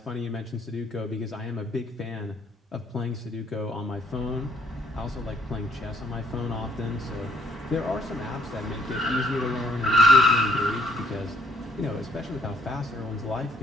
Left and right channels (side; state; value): both; normal; correlation 0.65